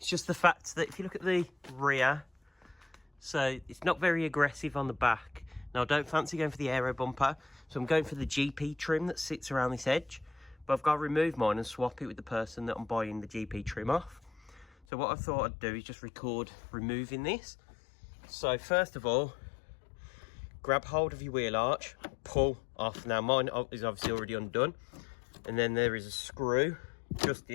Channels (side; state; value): right; drops out; at 14.9 s